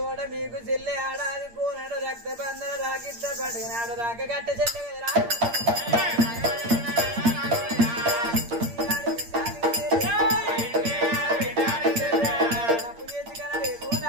మీకు చెల్లె ఆడాది కోనాడు రక్త బంధన రాకిట్ట పండుగ నాడు రాక గట్ట చెల్లె కదరా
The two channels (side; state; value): left; late; 8.7 ms